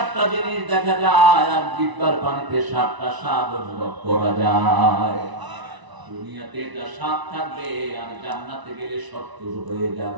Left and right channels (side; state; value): left; late; 1.0 ms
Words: জিনিস দেখা যায়, আর জিহ্বার পানিতে 7টা স্বাদ অনুভব করা যায়। দুনিয়াতে এটা 7 থাকবে, আর জান্নাতে গেলে 70 হয়ে